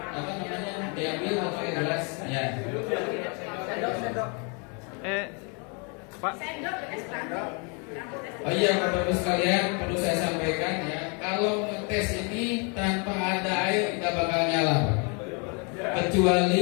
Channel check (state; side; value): quieter; right; 34.6 dB